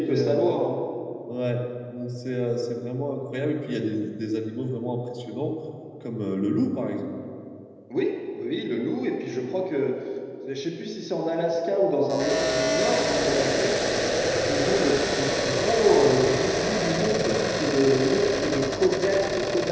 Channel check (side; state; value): both; identical; correlation 1.00